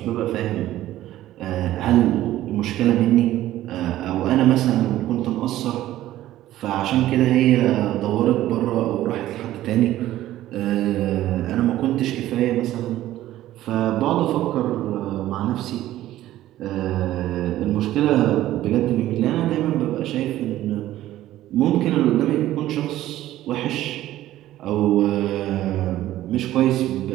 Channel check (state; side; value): quieter; left; 14.3 dB